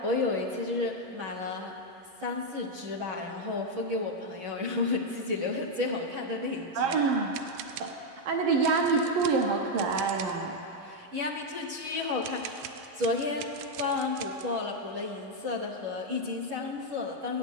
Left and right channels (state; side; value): late; left; 11 ms